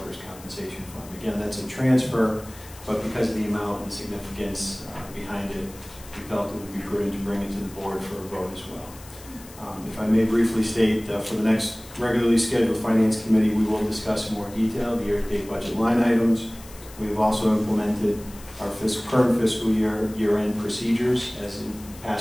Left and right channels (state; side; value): noise; left; hiss, 19 dB below the sound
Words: compensation fund. Again, that's a transfer, but because of the amount and the significance behind it, we felt it would be prudent to bring it to the board for a vote as well. If I may briefly state, for the next regularly scheduled Finance Committee, we will discuss in more detail the year-to-date budget line items. We have also implemented our current fiscal year-end procedures. As in